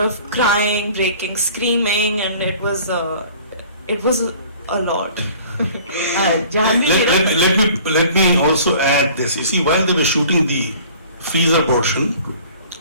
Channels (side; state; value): both; inverted; correlation -0.49